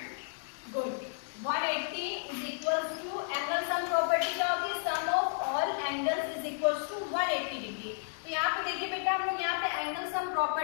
degree. Good. 180 is equal to angle sum property क्या होती है? Sum of all angles is equal to 180 degree. तो यहाँ पे देखिए बेटा, हम लोग यहाँ पे एंगल सम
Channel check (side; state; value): right; silent; digital silence